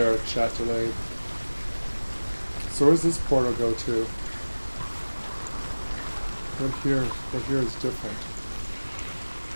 chat delayed. So where does this portal go to? What here is different?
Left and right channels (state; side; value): inverted; both; correlation -1.00